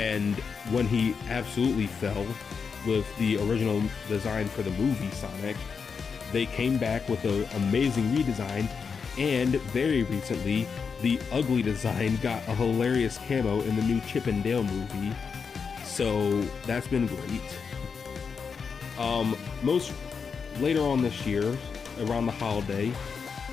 when he absolutely fell with the original design for the movie Sonic, they came back with an amazing redesign, and very recently, the ugly design got a hilarious camo in the new Chip and Dale movie, so that's been great. Later on this year, around the holiday,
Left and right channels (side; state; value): right; quieter; 5.8 dB